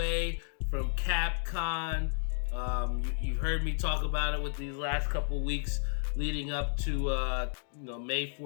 from CapCon. You've heard me talk about it with these last couple weeks leading up to May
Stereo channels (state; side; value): silent; right; digital silence